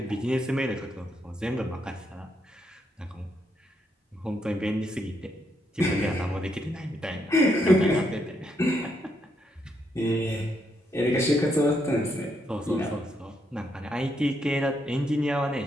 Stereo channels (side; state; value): both; normal; correlation 0.77